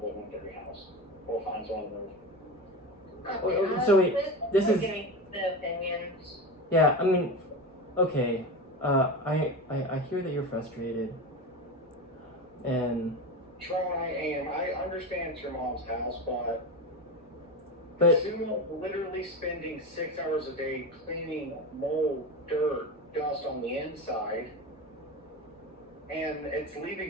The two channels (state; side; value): normal; both; correlation 0.22